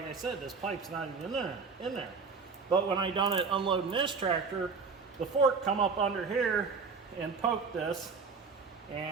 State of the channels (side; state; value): left; quieter; 4.9 dB